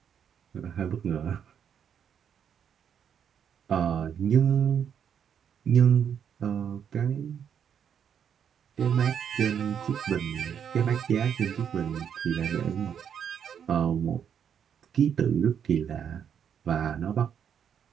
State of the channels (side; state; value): left; quieter; 8.2 dB